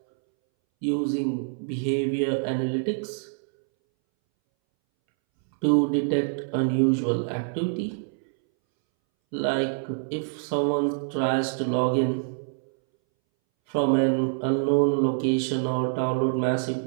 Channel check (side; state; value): left; silent; 61 dB below the other